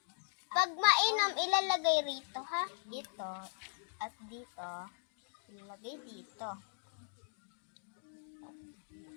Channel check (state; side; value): silent; right; digital silence